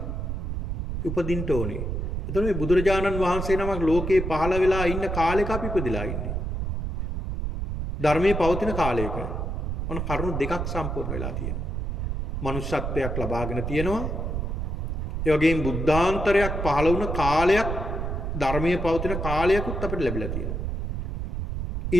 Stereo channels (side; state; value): right; noise; rumble, 3 dB below the sound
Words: උපදින්න ඕනේ. එතකොට මේ බුදුරජාණන් වහන්සේ නමක් ලෝකේ පහළ වෙලා ඉන්න කාලෙක අපි ඉපදිලා ඉන්නේ. ධර්මයේ පවතින කාලයක. ඔන්න කරුණු දෙකක් සම්පූර්ණ වෙලා තියෙනවා. මනුෂ්‍යත්වයක් ලබාගෙන තියෙනවා. ඒ වගේම බුද්ධාන්තරයක් පහළ වුණ කාලයක් ධර්මයේ පවතින කාලයකුත් අපිට ලැබිලා තියෙනවා.